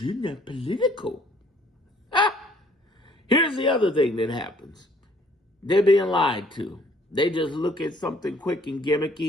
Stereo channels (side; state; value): both; normal; correlation 0.61